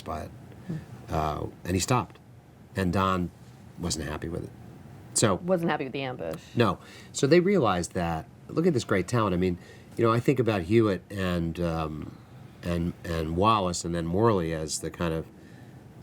by it, and he stopped. And Don wasn't happy with it. So Wasn't happy with the ambush. no, so they realized that. Look at this great talent. I mean, you know, I think about Hewitt and Wallace, and then Morley as the kind of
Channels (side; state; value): both; identical; correlation 1.00